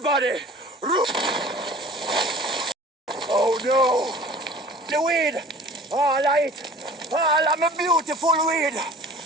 run! Oh no! The weed! All right! All of my beautiful weed!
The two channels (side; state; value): both; normal; correlation 0.45